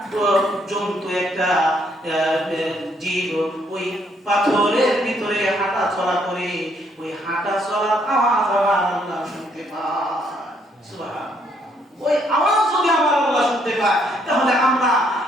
জন্তু, একটা জীব ওই পাথরের ভিতরে হাঁটা চলা করে, ওই হাঁটা চলার আওয়াজ আমার আল্লাহ শুনতে পায়। সুবহানাল্লাহ। ওই আওয়াজ যদি আমার আল্লাহ শুনতে পায়, তাহলে আমরা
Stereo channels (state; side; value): normal; both; correlation 0.70